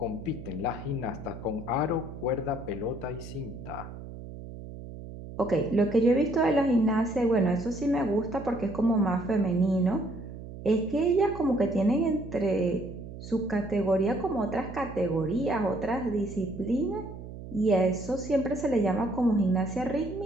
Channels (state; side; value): noise; right; hum, 12 dB below the sound